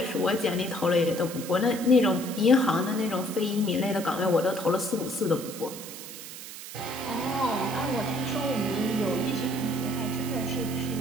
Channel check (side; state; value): right; noise; hiss, 12 dB below the sound